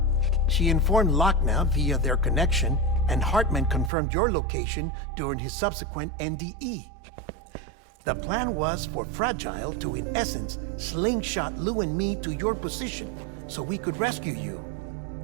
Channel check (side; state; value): left; drops out; at 3.9 s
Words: She informed Lochna via their connection, and Hartman confirmed your location during his subsequent NDE. The plan was for Fragile to, in essence, slingshot Lou and me to your position so we could rescue you.